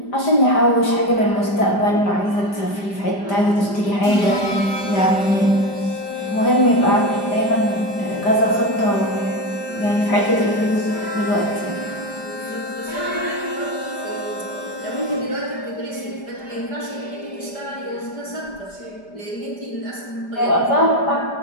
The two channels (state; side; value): late; right; 5.0 ms